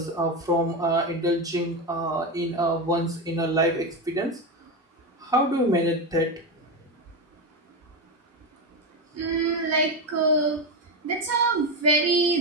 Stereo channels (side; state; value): both; normal; correlation 0.14